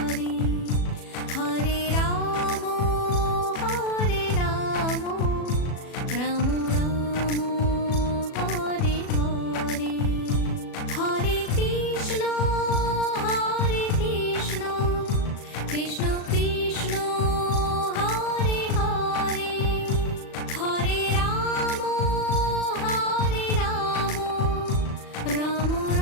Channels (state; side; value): late; right; 37 ms